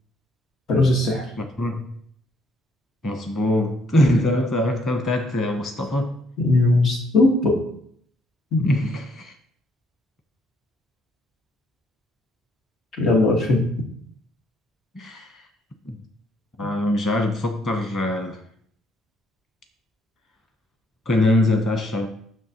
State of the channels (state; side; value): normal; both; correlation 0.70